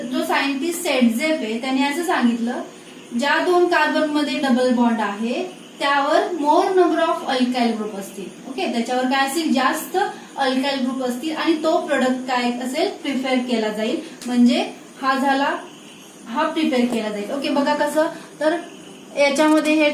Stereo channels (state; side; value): identical; both; correlation 1.00